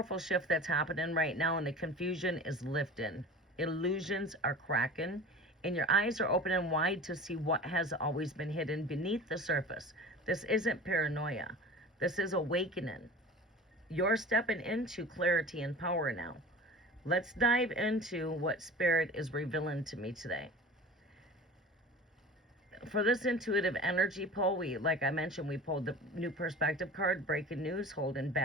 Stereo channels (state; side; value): normal; both; correlation 0.37